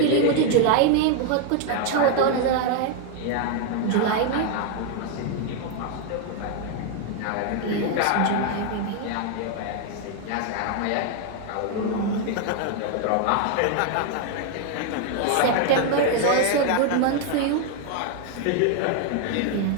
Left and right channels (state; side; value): different; both; correlation 0.00